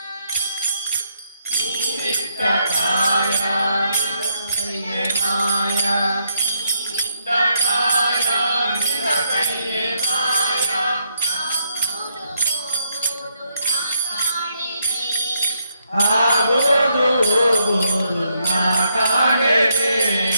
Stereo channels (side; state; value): both; inverted; correlation -0.77